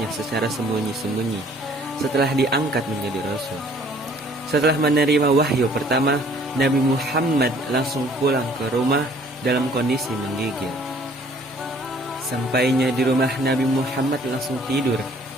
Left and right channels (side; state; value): both; normal; correlation 0.57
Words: secara sembunyi-sembunyi setelah diangkat menjadi Rasul. Setelah menerima wahyu pertama, Nabi Muhammad langsung pulang ke rumah dalam kondisi menggigil. Sampainya di rumah, Nabi Muhammad langsung tidur